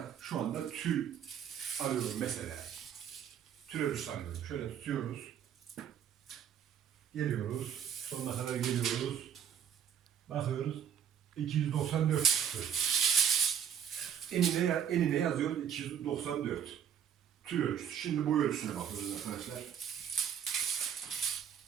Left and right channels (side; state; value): left; quieter; 8.6 dB